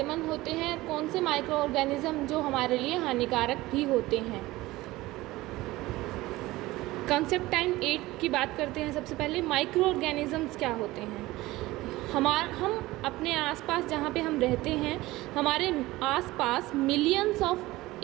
होते हैं, कौन से माइक्रोऑर्गेनिज्म जो हमारे लिए हानिकारक भी होते हैं। कॉन्सेप्ट टाइम 8 की बात करते हैं। सबसे पहले माइक्रोऑर्गेनिजम्स क्या होते हैं। हम अपने आसपास जहाँ पे हम रहते हैं, हमारे आसपास मिलियंस ऑफ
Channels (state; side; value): quieter; left; 18.7 dB